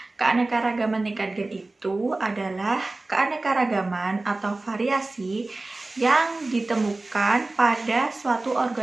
Keanekaragaman tingkat gen itu adalah keanekaragaman atau variasi yang ditemukan pada suatu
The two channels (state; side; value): quieter; left; 3.1 dB